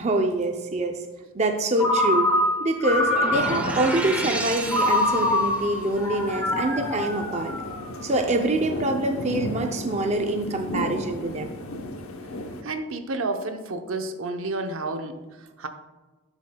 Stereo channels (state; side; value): normal; both; correlation 0.23